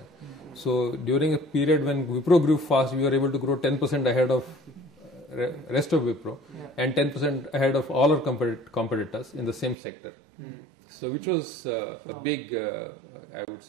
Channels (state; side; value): drops out; left; at 9.8 s